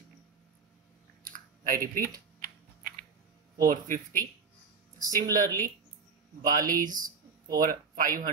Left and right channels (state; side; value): quieter; left; 5.2 dB